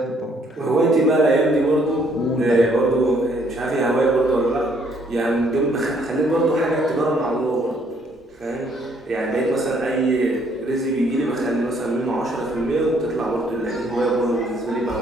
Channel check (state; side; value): normal; both; correlation 0.66